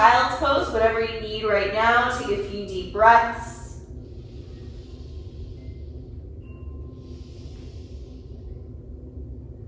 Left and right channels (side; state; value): both; identical; correlation 1.00